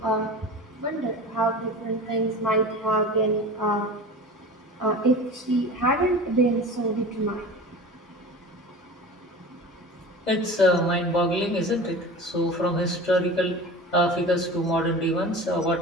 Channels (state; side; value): normal; both; correlation 0.35